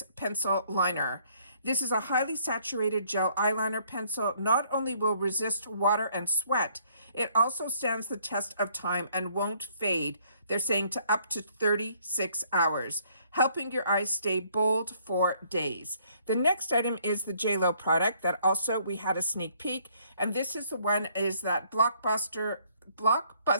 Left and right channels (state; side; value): inverted; both; correlation -0.65